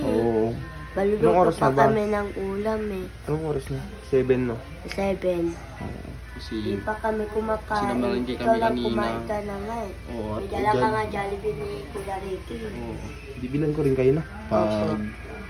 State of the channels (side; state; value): both; identical; correlation 1.00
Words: Oo. Anong Baluluto oras pa na ba? kami ng ulam eh. Anong oras na? 7 no? 7. Oo. Kasi, Di pa kami kumakain. Sinamalengke kami Ikaw lang kanina. kumain ka na nga eh. oo. May dala ka nga Jollibee ni Kuya Ricky. Oo. Bibilan ko rin kayo na. Opo.